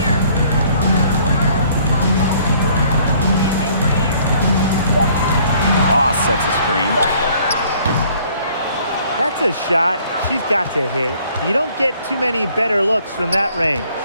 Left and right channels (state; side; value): inverted; both; correlation -0.59